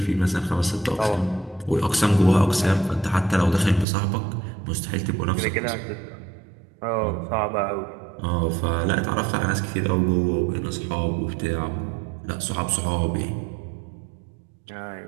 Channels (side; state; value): left; drops out; at 3.9 s